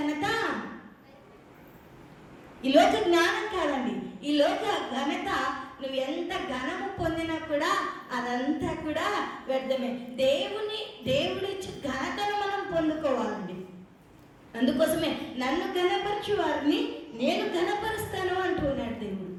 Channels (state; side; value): identical; both; correlation 1.00